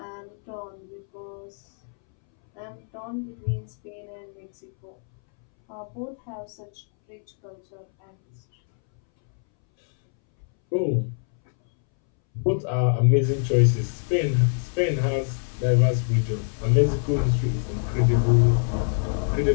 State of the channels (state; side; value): silent; right; 62 dB below the other